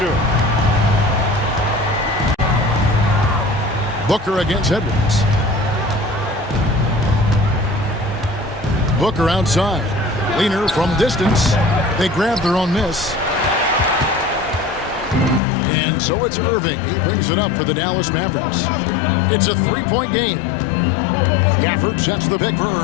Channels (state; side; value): drops out; right; at 15.4 s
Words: Booker against Edwards. Booker outside. Leaner from distance. They grab their own miss. And so it's Irving. He brings it up for the Dallas Mavericks. It's a three-point game. Gafford sets the pick for